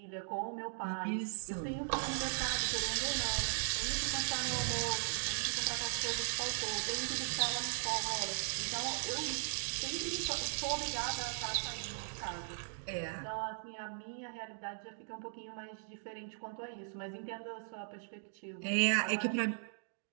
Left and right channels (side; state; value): left; silent; digital silence